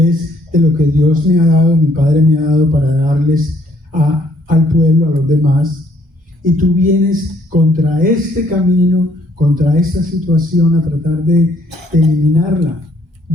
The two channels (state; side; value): normal; both; correlation 0.65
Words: de lo que Dios me ha dado, mi Padre me ha dado para darles al pueblo, a los demás, y tú vienes contra este camino, contra esta situación, a tratar de eliminarla.